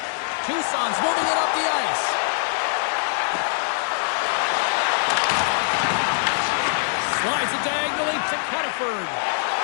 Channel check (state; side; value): silent; right; 63 dB below the other